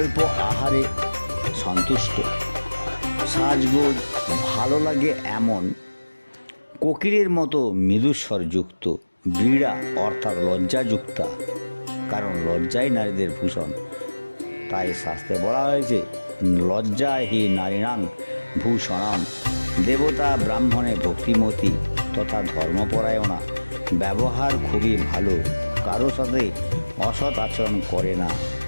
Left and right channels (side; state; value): both; inverted; correlation -1.00